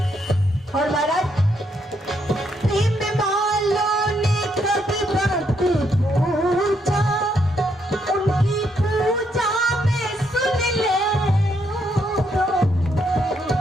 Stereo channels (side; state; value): both; normal; correlation 0.75